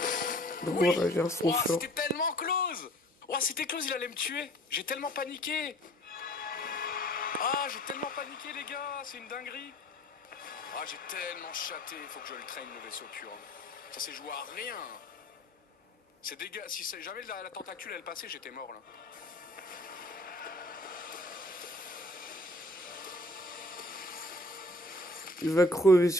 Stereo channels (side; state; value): both; normal; correlation 0.51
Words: Donc on va réagir à son Ouah, short. c'était tellement close. Ouah, c'était close, il allait me tuer. J'ai tellement paniqué. Ah, j'ai tellement paniqué, les gars, c'est une dinguerie. Ah, j'ai tellement chaté, faut que je le traîne, le vaisseau pur. Ça s'est joué à rien. C'est dégueu. Si jamais la tentacule elle passait, j'étais mort là. Il va crever